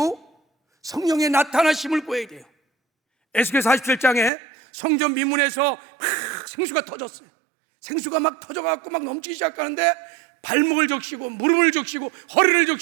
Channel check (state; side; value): drops out; left; at 4.3 s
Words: 성령의 나타나심을 구해야 돼요. 에스겔 47장에 성전 미문에서 생수가 터졌어요. 생수가 막 터져갖고 막 넘치기 시작하는데 발목을 적시고 무릎을 적시고 허리를